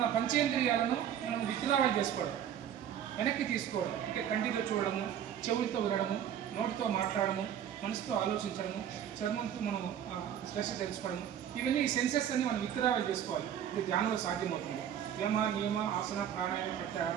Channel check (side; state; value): left; quieter; 9.6 dB